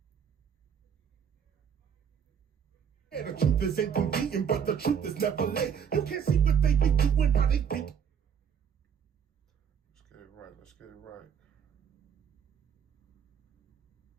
The truth is inconvenient, but the truth is never late. You can't see what they be doing, how they think. Let's get it right. Let's get it right.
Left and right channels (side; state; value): left; quieter; 7.5 dB